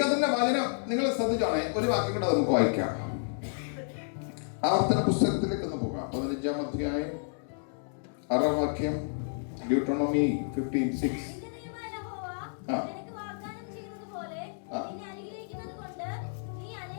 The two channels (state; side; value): silent; right; digital silence